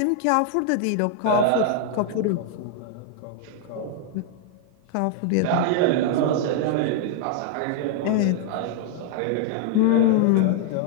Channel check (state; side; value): different; both; correlation -0.01